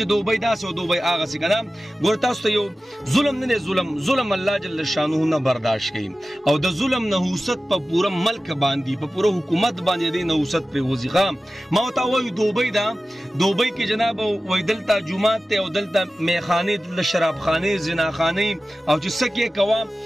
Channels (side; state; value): both; normal; correlation 0.95